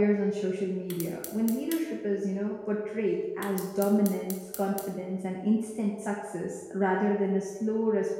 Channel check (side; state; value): both; identical; correlation 1.00